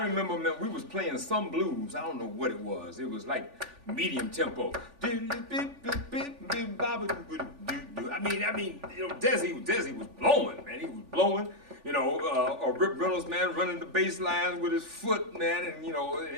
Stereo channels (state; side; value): late; left; 3.4 ms